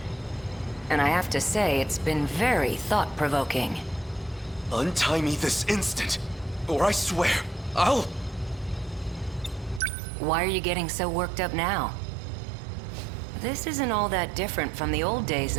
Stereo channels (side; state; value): left; drops out; at 9.8 s